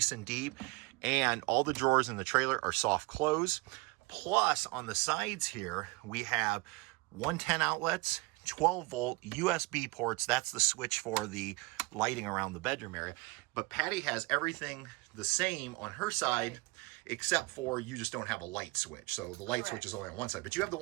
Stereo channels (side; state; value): left; quieter; 24.6 dB